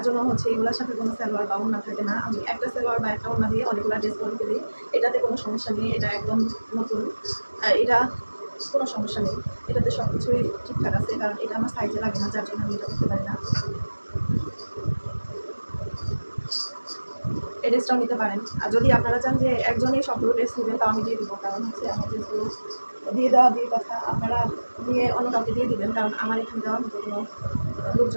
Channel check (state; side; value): inverted; both; correlation -1.00